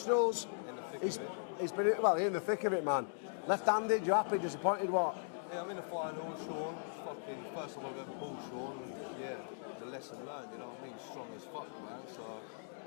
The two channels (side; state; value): right; silent; digital silence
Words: In the thick of it. He's been, well, in the thick of it, man. Left-handed, you happy, disappointed, what? Yeah, I'm in the final with Sean. It's fucking first time I've ever pulled Sean, and yeah, it's a lesson learned, you know what I mean? He's strong as fuck, man. So